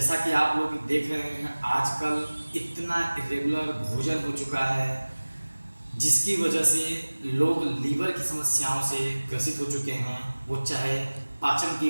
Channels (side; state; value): both; inverted; correlation -1.00